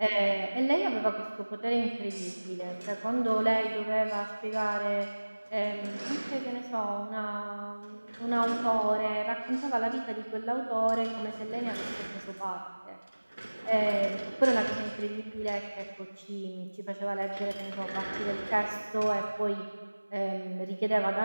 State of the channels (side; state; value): both; inverted; correlation -1.00